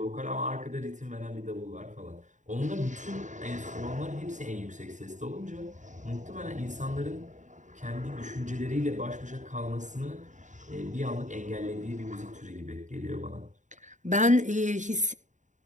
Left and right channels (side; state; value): left; late; 0.36 ms